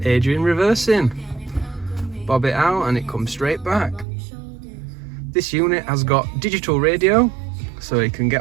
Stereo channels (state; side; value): drops out; left; at 4.0 s